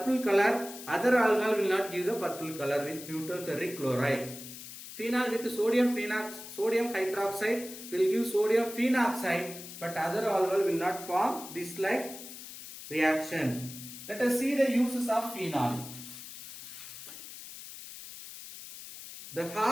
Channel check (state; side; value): noise; left; hiss, 13 dB below the sound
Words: color, other alcohol will not give the purple color with neutral ferric chloride. Phenol with sodium hydroxide will give sodium phenoxide, but other alcohol will not form this like reaction. Let us see the uses of phenol. The